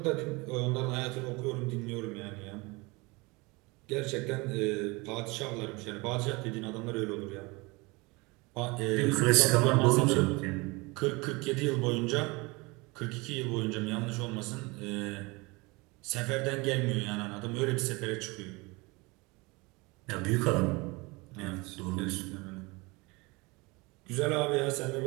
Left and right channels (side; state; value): left; quieter; 25.5 dB